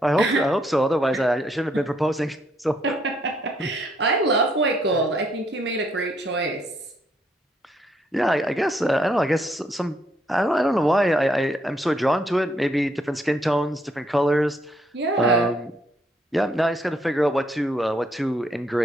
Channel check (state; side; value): normal; both; correlation 0.72